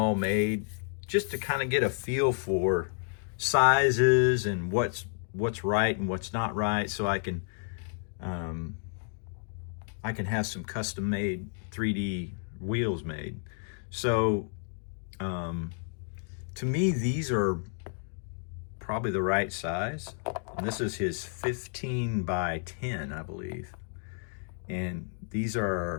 made just to kind of get a feel for sizes and what's right and what's not right, so I can have some custom made 3D wheels made. So to me, these are probably the right size. And this is his 15 by 10, I believe. And these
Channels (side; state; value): right; silent; 57 dB below the other